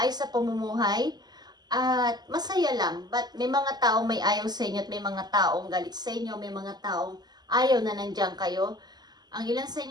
sa pamumuhay, at masaya lang. But may mga taong may ayaw sa inyo at may mga taong galit sa inyo, may mga taong ayaw na nandiyan kayo. Ang ilan sa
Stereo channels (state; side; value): late; left; 0.20 ms